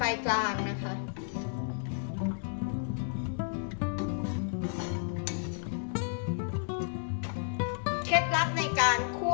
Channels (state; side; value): silent; right; digital silence